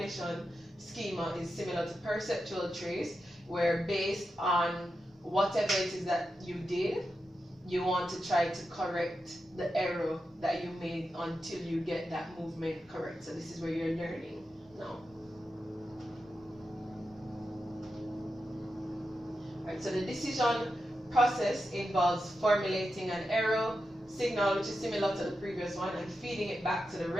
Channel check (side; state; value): both; normal; correlation 0.89